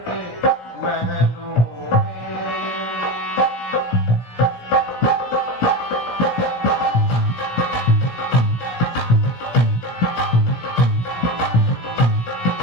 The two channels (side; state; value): right; late; 17 ms